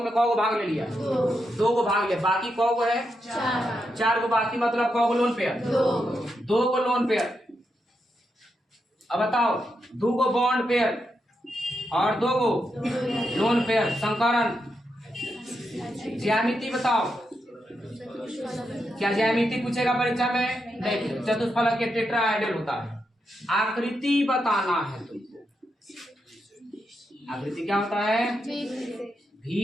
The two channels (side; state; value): both; normal; correlation 0.84